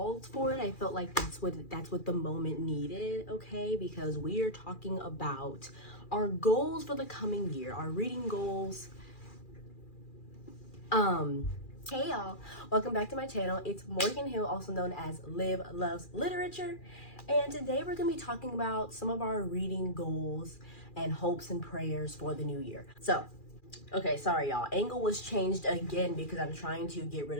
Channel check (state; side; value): late; right; 2.4 ms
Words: for it. I felt like that's what the moment needed, okay? Because we are talking about our goals for the coming year, our reading goals. Hey y'all, welcome back to my channel. It's Morgan Hill, also known as Liv Loves Literature. And today we're gonna be talking about some of our reading goals and hopes and prayers for the new year. So, okay, sorry y'all. Angle was changed again because I'm trying to get rid